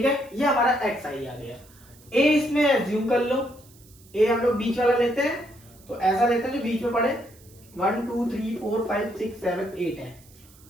है, ये हमारा एक्स आई आ गया। ए इसमें एज्यूम कर लो। ए हम लोग बीच वाला लेते हैं, तो ऐसा लेते हैं जो बीच में पड़े। 1 2 3 4 5 6 7 8 है।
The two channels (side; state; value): right; noise; hiss, 26 dB below the sound